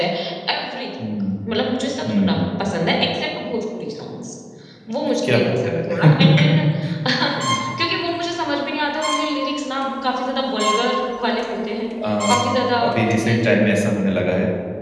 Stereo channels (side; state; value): both; identical; correlation 1.00